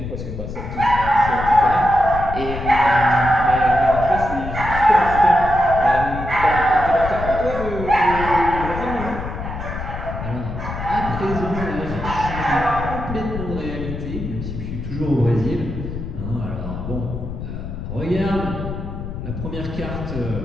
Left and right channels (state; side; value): noise; left; rumble, 7 dB below the sound